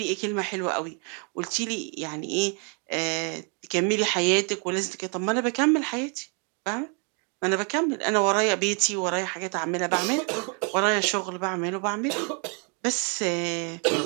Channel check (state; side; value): quieter; left; 37.7 dB